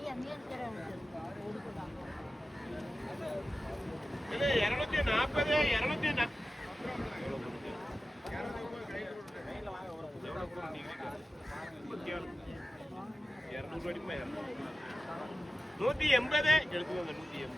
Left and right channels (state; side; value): normal; both; correlation 0.93